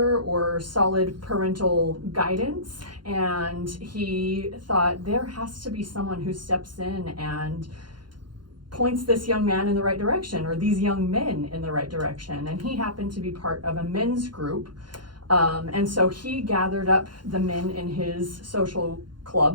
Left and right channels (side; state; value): left; late; 0.71 ms